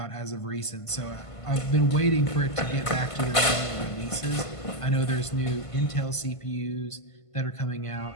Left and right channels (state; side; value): late; right; 1.5 ms